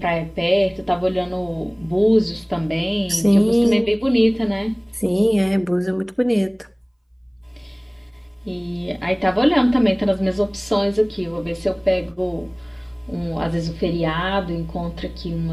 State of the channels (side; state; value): both; identical; correlation 1.00